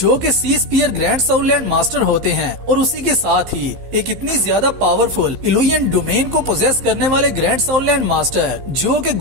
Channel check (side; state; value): left; late; 15 ms